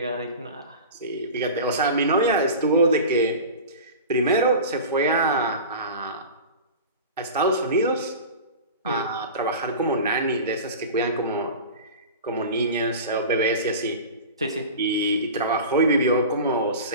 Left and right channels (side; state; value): both; inverted; correlation -0.33